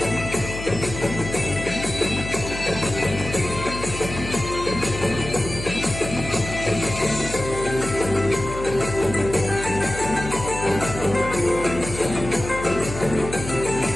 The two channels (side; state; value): left; noise; hum, 9 dB below the sound